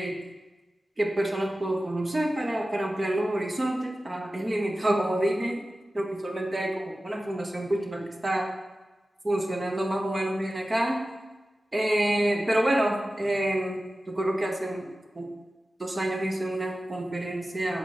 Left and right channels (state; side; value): normal; both; correlation 0.95